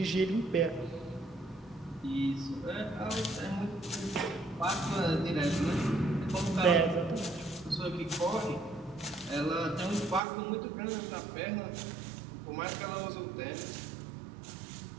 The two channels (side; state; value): left; drops out; at 10.2 s